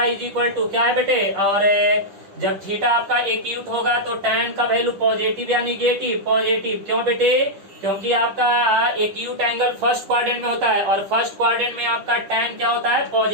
is equal to क्या है बेटे? और जब थीटा आपका एक्यूट होगा तो tan का वैल्यू पॉजिटिव या निगेटिव? पॉजिटिव। क्यों बेटे? क्योंकि आपका एक्यूट एंगल फर्स्ट क्वाड्रेंट में होता है और फर्स्ट क्वाड्रेंट में आपका tan क्या होता है?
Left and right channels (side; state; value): left; late; 10 ms